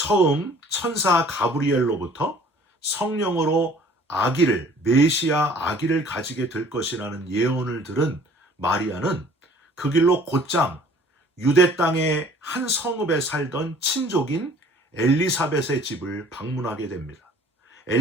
천사 가브리엘로부터 성령으로 아기를 메시아 아기를 가지게 될 것이라는 예언을 들은 마리아는 그 길로 곧장 유대 땅의 한 성읍에 살던 친족인 엘리사벳의 집을 방문하게 됩니다.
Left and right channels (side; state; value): both; normal; correlation 0.53